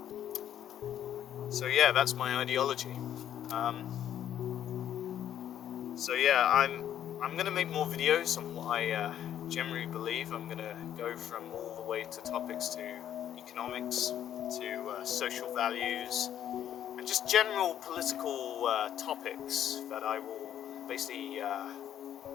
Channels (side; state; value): right; quieter; 10.5 dB